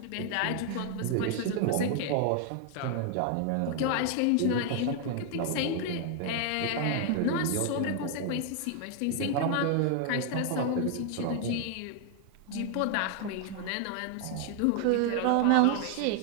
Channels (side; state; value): both; different; correlation 0.00